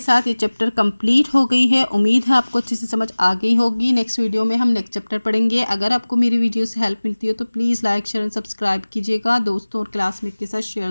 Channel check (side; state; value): both; inverted; correlation -1.00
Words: ये चैप्टर कंप्लीट हो गई है। उम्मीद है आपको अच्छे से समझ आ गई होगी। नेक्स्ट वीडियो में हम नेक्स्ट चैप्टर पढ़ेंगे। अगर आपको मेरी वीडियो से हेल्प मिलती हो तो please like share and subscribe कीजिएगा। दोस्तों और क्लासमेट के साथ